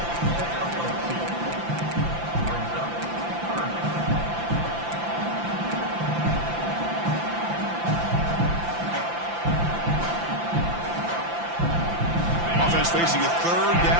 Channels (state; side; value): late; left; 5.8 ms